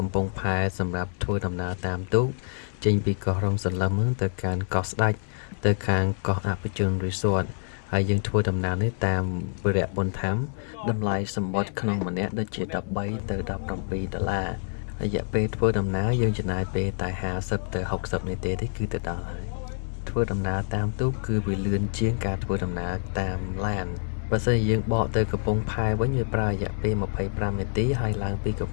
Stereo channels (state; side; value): silent; right; 60 dB below the other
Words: ំពង់ផែសម្រាប់ធ្វើដំណើរតាមទូកចេញពីកោះរំសន្លឹមទៅកាន់កោះស្ដេចទៅខាងកោះអភិជន Resort ហើយយើងធ្វើដំណើរនេះតាមវិរៈបុណ្យធម្មតម្លៃសម្បត្តិក្នុងម្នាក់ដូចជា13ទៅ$17រយៈពេលធ្វើដំណើរយើងចំណាយពេលតែ50ទៅ60នាទីទេគឺទៅដល់ហើយធ្វើដំណើរតាមទូកគឺវាលឿនជាងការធ្វើដំណើរតាមឡានបើសិនជាយើងបកទៅកំពង់ផែវិញវាប្រើរយៈពេល25នាទីហើយឡើងពីកំ